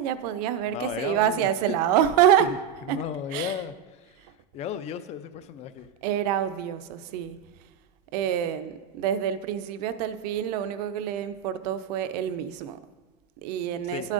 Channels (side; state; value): left; quieter; 7.8 dB